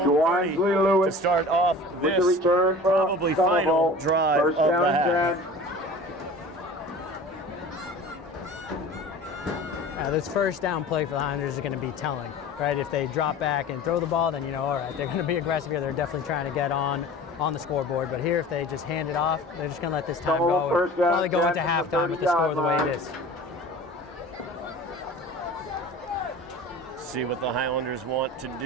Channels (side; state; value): both; normal; correlation 0.40